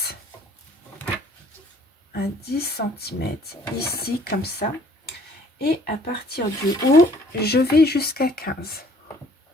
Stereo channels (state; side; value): normal; both; correlation 0.57